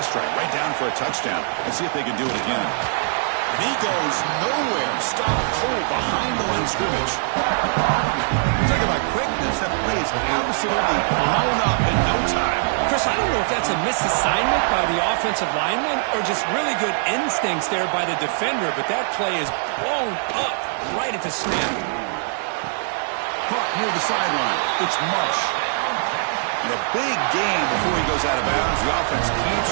drive, right down for a touchdown. Let's see if they can do it again. He goes nowhere. Stop cold behind the line of scrimmage. Talk about quickness. That play is absolutely blown up in no time. Chris, I don't know if that's a misassignment by the offensive lineman or just really good instincts there by the defender, but that play is blown up right at the snap. Caught near the sideline. It's Marsh. And a big gain before he goes out of bounds. The offense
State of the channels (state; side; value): silent; left; 64 dB below the other